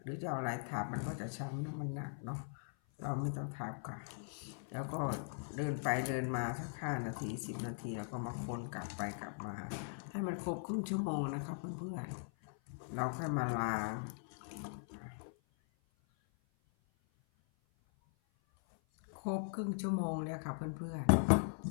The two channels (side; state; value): right; silent; 51 dB below the other